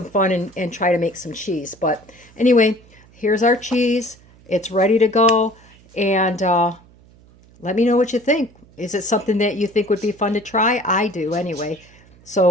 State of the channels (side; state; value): right; noise; hum, 27 dB below the sound